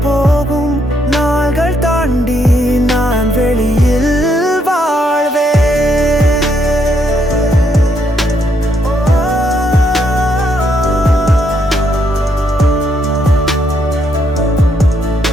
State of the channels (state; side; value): normal; both; correlation 0.75